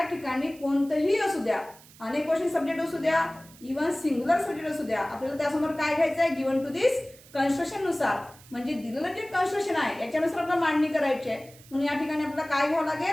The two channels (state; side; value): noise; right; hiss, 23 dB below the sound